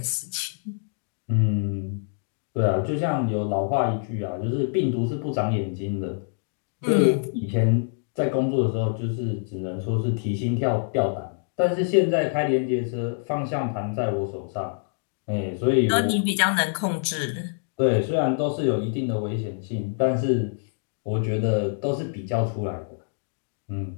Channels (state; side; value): silent; right; digital silence